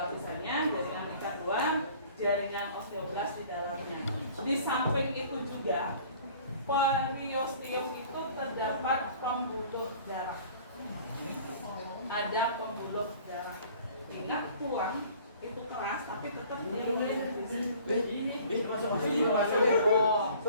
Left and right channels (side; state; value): both; inverted; correlation -0.50